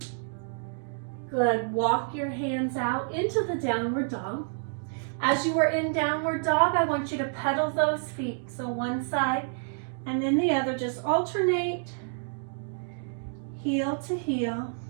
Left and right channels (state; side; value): silent; left; digital silence